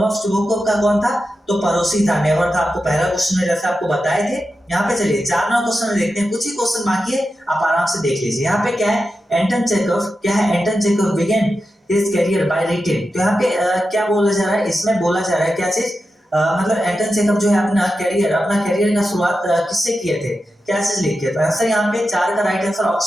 चुबुकोव का कौन था, तो पड़ोसी था, नेवर था, आपको पहला क्वेश्चन में जैसे आपको बताए थे। यहाँ पे चलिए 4 नंबर क्वेश्चन में देखते हैं, कुछ ही क्वेश्चन बाकी है, आप आराम से देख लीजिए। यहाँ पे क्या है, एंटन चेखव, क्या है, Anton Chekhov began his career by writing, तो यहाँ पे क्या बोला जा रहा है, इसमें बोला जा रहा है क्या चीज, मतलब एंटन चेखव जो है अपना करियर का शुरुआत किससे किए थे, क्या चीज लिख के, तो आंसर यहाँ पे 4 का राइट आंसर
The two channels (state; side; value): normal; both; correlation 0.90